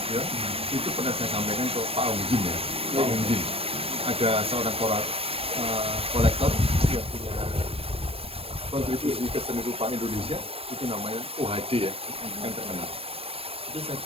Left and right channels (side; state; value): left; late; 0.28 ms